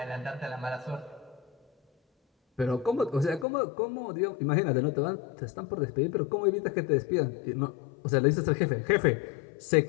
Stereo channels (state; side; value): drops out; right; at 3.5 s